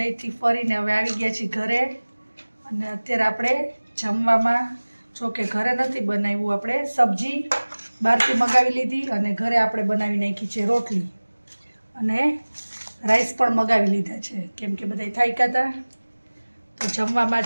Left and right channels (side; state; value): both; inverted; correlation -1.00